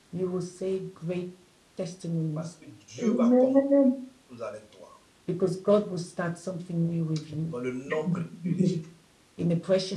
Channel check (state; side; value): identical; both; correlation 1.00